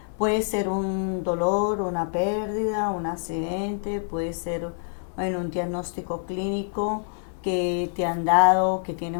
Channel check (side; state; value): right; silent; digital silence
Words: Puede ser un dolor, una pérdida, un accidente, puede ser en un diagnóstico clínico que te han dado, que tienes